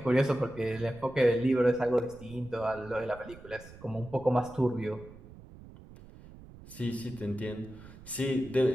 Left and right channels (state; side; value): noise; right; rumble, 18 dB below the sound